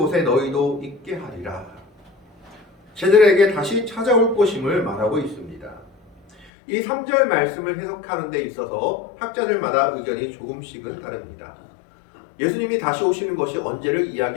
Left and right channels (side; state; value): right; drops out; at 6.5 s